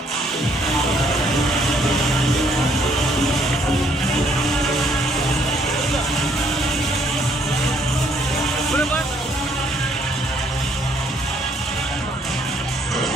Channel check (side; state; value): both; normal; correlation 0.66